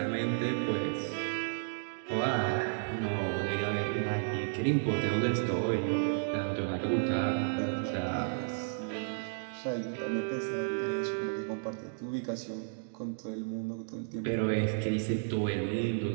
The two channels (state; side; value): silent; left; digital silence